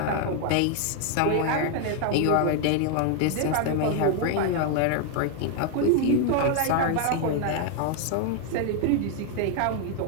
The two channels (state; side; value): different; both; correlation 0.00